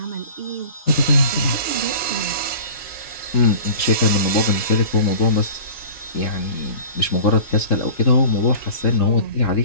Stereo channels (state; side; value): late; right; 3.7 ms